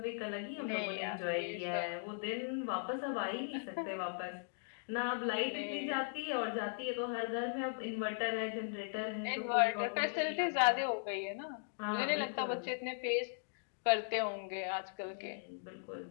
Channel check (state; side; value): silent; right; digital silence